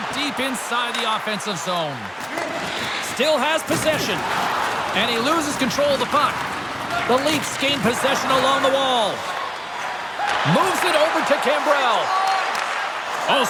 deep inside the offensive zone. Still has possession. And he loses control of the puck. The Leafs gain possession along the wall. Moves it over to Cambrell. Oh,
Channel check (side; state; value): both; identical; correlation 1.00